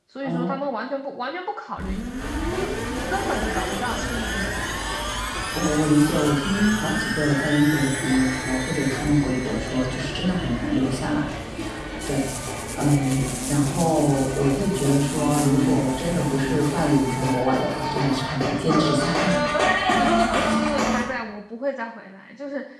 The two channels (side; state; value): both; identical; correlation 1.00